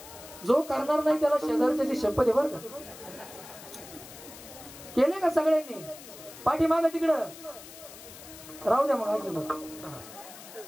जो करणार नाही त्याला शेजारच्याची शपथ आहे, बरं का? केले का सगळ्यांनी? पाठीमागं तिकडं राहू द्या. मग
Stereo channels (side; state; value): left; noise; hiss, 16 dB below the sound